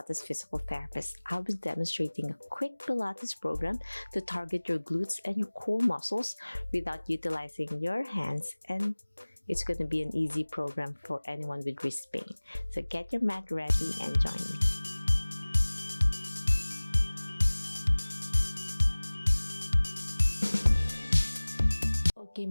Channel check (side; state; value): both; inverted; correlation -1.00